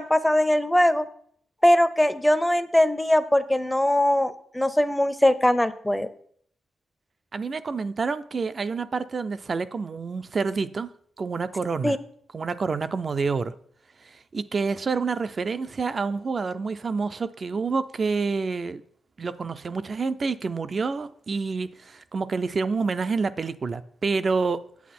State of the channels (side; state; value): both; normal; correlation 0.94